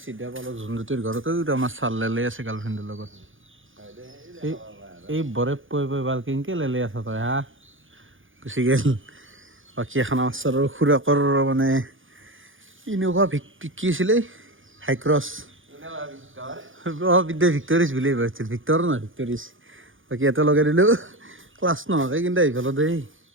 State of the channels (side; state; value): left; late; 0.58 ms